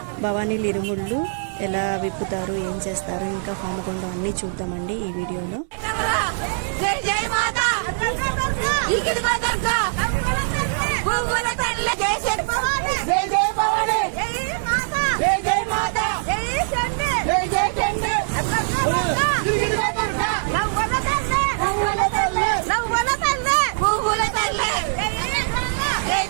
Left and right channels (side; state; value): left; silent; 64 dB below the other